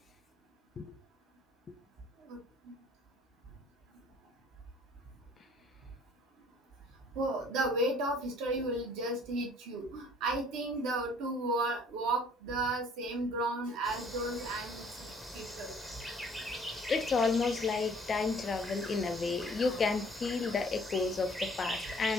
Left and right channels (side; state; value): both; normal; correlation 0.57